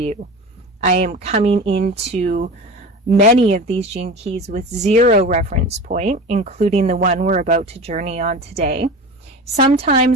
I am coming into many of these gene keys with zero reference point, including the one we're about to journey on today.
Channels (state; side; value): normal; both; correlation 0.32